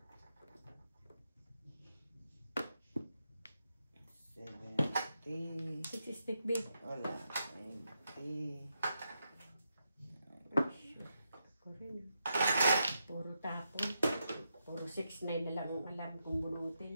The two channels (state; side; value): inverted; both; correlation -0.84